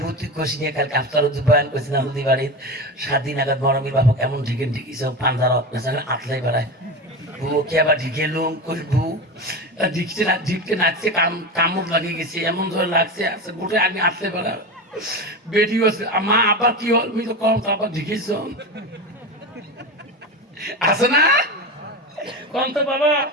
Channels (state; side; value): normal; both; correlation 0.23